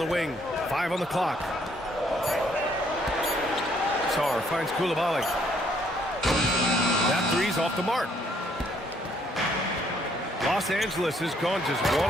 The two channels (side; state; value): both; normal; correlation 0.67